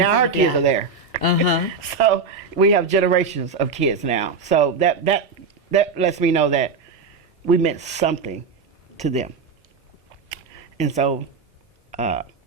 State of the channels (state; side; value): quieter; left; 4.8 dB